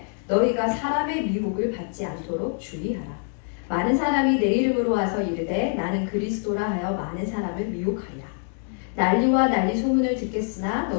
너희가 사람의 미혹을 받지 않도록 주의하라. 많은 사람이 내 이름으로 와서 이르되 나는 그리스도라 하여 많은 사람을 미혹하리라. 난리와 난리 소문을 듣겠으나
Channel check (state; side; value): silent; right; 56 dB below the other